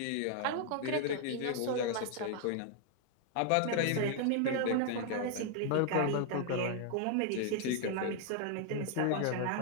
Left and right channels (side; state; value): both; different; correlation 0.00